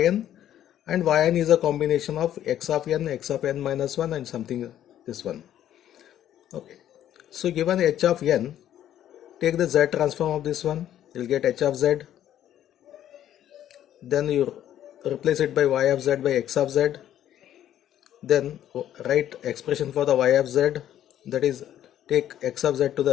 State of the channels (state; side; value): quieter; right; 11.4 dB